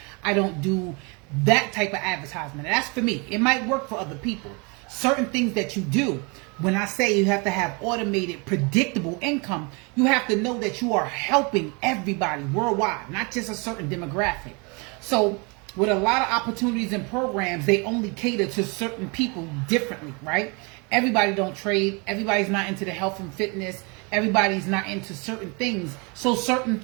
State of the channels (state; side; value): quieter; left; 30.9 dB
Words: I don't do that type of advertisement. That's for me. It might work for other people. Certain things that you do, when I say you have to have automated, predictable income, you have to know that you are helping everybody worldwide, not just a certain demographic. So with a lot of opportunities and programs, they only cater to certain people differently, right? Everybody don't trade. Everybody's not into the health and fitness. Everybody's not into certain things. So